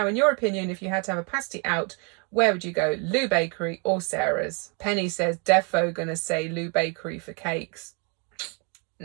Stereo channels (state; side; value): quieter; left; 35.4 dB